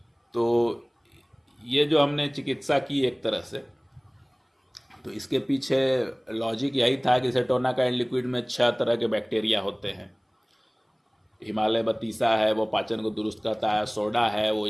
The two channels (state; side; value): identical; both; correlation 1.00